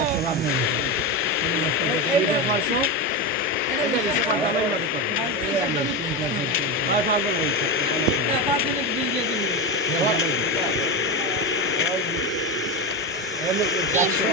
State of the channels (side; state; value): both; normal; correlation 0.16